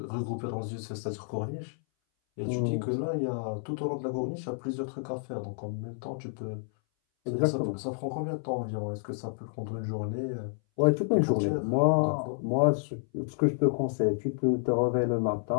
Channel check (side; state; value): right; silent; 58 dB below the other